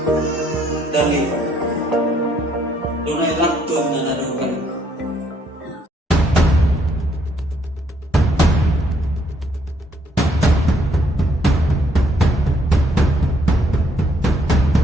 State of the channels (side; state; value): both; normal; correlation 0.69